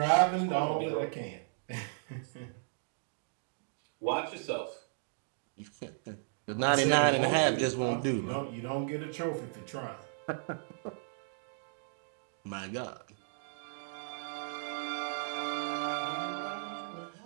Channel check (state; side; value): silent; left; digital silence